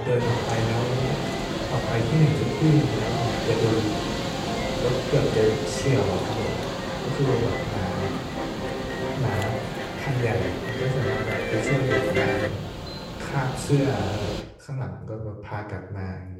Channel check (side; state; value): both; identical; correlation 1.00